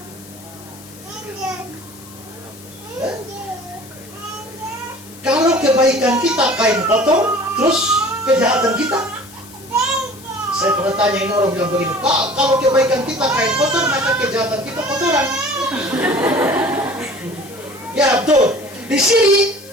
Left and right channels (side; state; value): left; noise; hiss, 20 dB below the sound